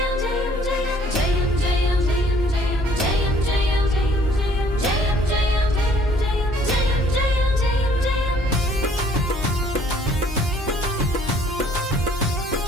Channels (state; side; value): normal; both; correlation 0.59